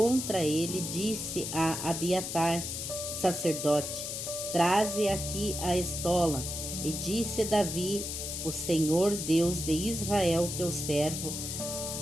ele, disse a Abiatar, sacerdote: traze aqui a estola. E disse Davi: o Senhor Deus de Israel, teu servo,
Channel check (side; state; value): left; noise; hiss, 5 dB below the sound